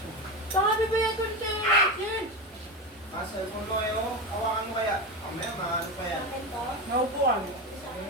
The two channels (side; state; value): both; normal; correlation 0.19